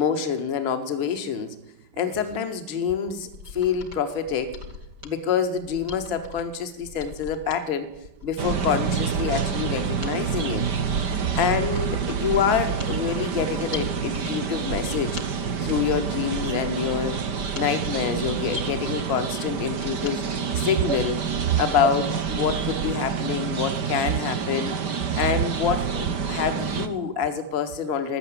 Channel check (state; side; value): late; left; 5.1 ms